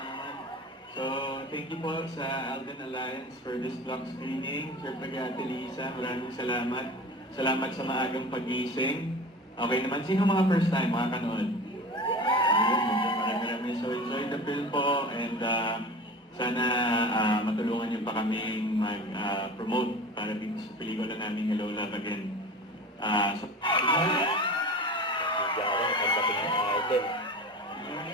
So, thank you po sa Alden Alliance for this block screening. Siyempre kay Ate Lisa, maraming salamat. Salamat sa maagang pagising. Okay naman, sino mga first time makakanood? Marami. So, enjoy the film po and sana matulungan niyo pa kaming mag-promote para dito sa pelikula namin Hello Love Again. Nagsigawan, pagdating ng Alden.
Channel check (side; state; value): both; normal; correlation 0.35